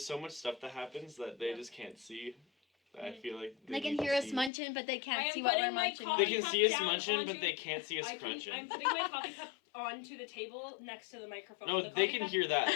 so much stuff that happens that they just can't see. I feel like They can need to hear us see. munching, but they I can't am see what we're putting my munching. coffee They can cup see us down munching, but onto- they can't see us crunching. I'm putting my coffee cup onto the table next to the microphone. No, The they coffee can cup- hear that.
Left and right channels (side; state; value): right; drops out; at 4.5 s